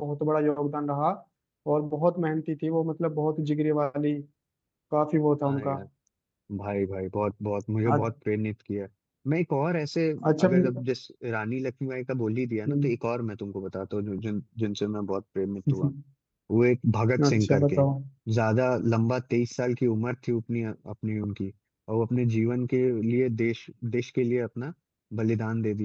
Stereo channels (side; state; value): both; identical; correlation 1.00